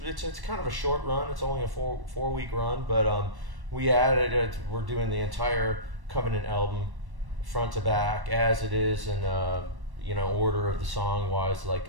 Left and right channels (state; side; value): late; left; 1.1 ms